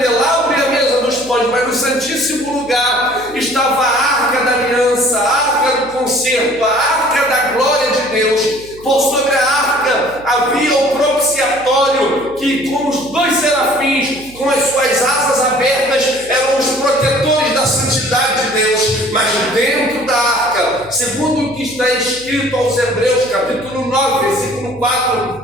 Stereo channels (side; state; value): right; noise; hum, 22 dB below the sound